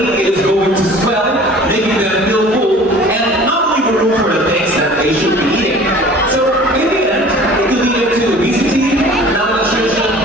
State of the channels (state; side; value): normal; both; correlation 0.46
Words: is going to swell, making them feel full, and not leave room for the things that they should be eating. So in the end, it could lead to obesity, malnutrition,